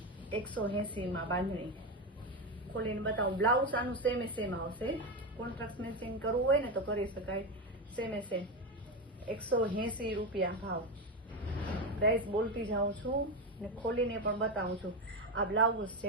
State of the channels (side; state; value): both; normal; correlation 0.14